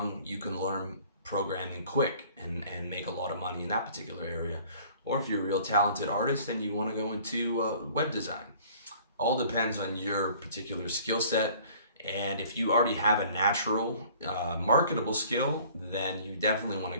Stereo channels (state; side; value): inverted; both; correlation -0.52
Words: you can learn programming quick and make a lot of money in that particular area. Or if you're a real talented artist and you want to go into web design, all depends on your particular skill set. And if you already have a natural marketable skill, then you definitely want to